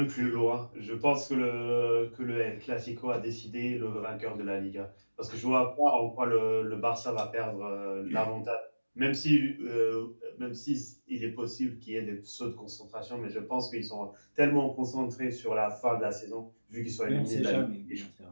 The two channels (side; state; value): both; inverted; correlation -1.00